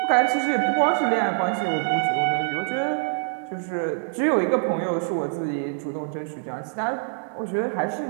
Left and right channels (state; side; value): silent; left; 62 dB below the other